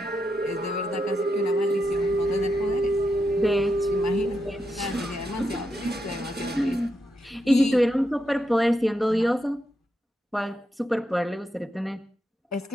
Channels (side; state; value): both; normal; correlation 0.84